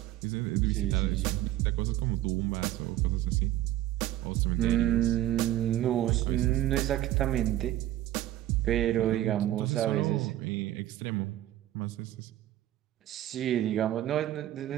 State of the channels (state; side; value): quieter; left; 13.9 dB